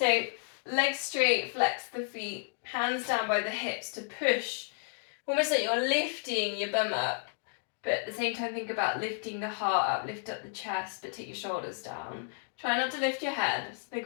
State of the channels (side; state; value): right; silent; 57 dB below the other